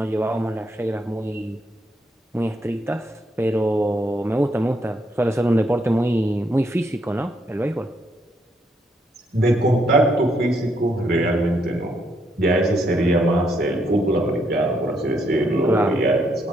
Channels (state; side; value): normal; both; correlation 0.75